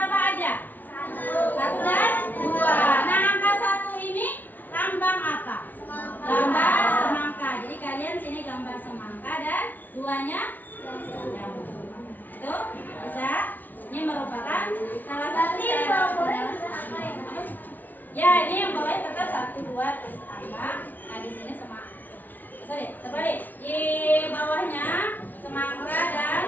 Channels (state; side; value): late; right; 0.083 ms